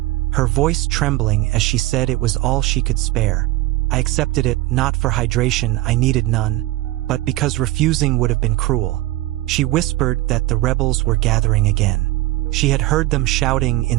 her voice trembling as she said it was all she could spare. I accepted it, not for hydration, I needed none, but because refusing would have been cruel. She whispered that the rebels were gathering again. She had heard them shouting in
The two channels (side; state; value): left; quieter; 17.7 dB